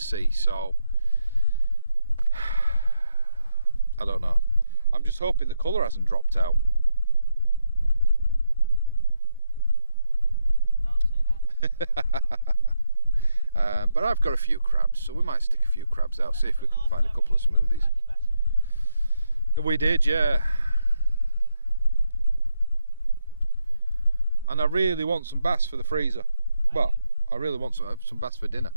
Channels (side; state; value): both; inverted; correlation -0.80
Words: so I don't know. I'm just hoping the colour hasn't dropped out. Don't say that. But I've got a few crabs, so we might stick a few crabs out, see if we can find a couple of smoothies. We did, yeah. And I really want some bass for the freezer. Well, I really want some bass for dinner.